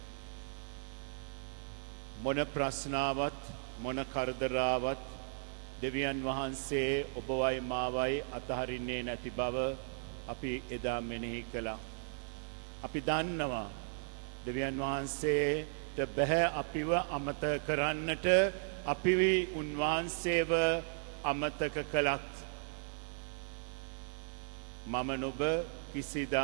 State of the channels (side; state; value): left; silent; digital silence